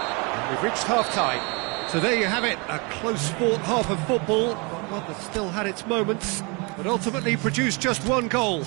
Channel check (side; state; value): left; quieter; 30.1 dB